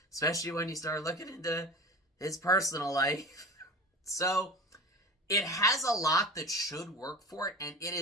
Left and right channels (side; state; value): both; normal; correlation 0.34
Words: especially when you start looking into his personal life. So, it has a lot that should work for it, and it